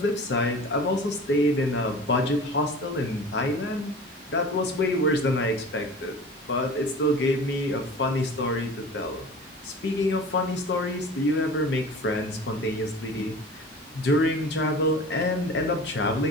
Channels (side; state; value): both; normal; correlation 0.39